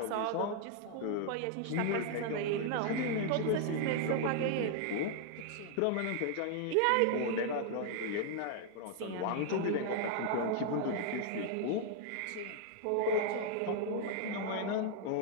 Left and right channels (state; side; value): different; both; correlation 0.00